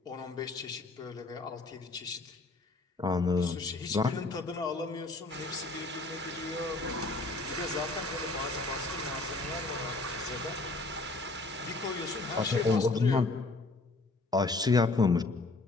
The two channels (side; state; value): right; quieter; 3.2 dB